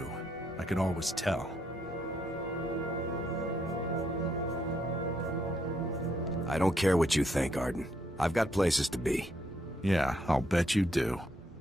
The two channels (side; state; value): both; normal; correlation 0.75